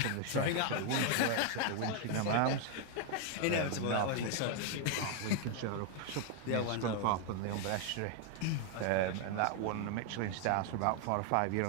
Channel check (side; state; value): both; different; correlation 0.01